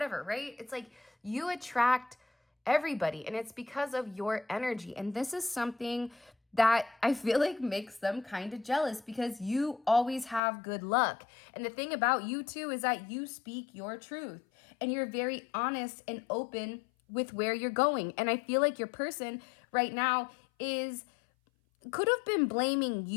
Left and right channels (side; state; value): right; drops out; at 10.4 s